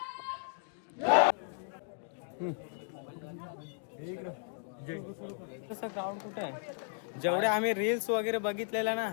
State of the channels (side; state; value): right; silent; digital silence